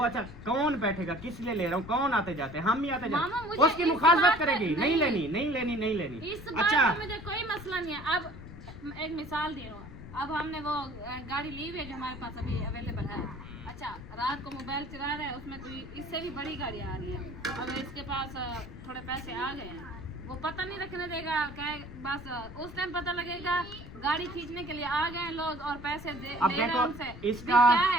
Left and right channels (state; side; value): noise; left; rumble, 14 dB below the sound